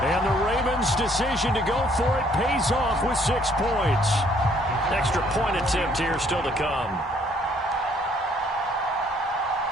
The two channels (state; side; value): normal; both; correlation 0.64